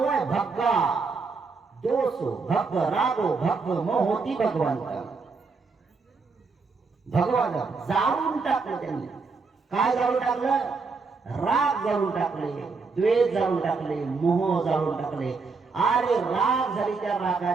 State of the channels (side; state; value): left; quieter; 4.5 dB